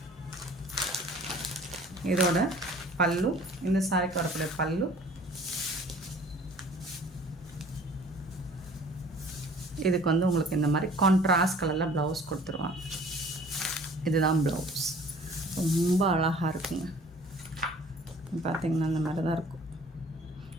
இதோட பல்லு, இந்த சாரிக்கு வரக்கூடிய பல்லு. இதுக்கு வந்து உங்களுக்கு இந்த மாதிரி கான்ட்ராஸ்ட் கலரில் ப்ளவுஸ் கொடுத்துருவாங்க. இதுதான் ப்ளவுஸ். ரொம்ப அழகாக இருக்குங்க. பார்த்திங்கன்னா இந்த மாதிரி தான் இருக்கும்.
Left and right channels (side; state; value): both; normal; correlation 0.50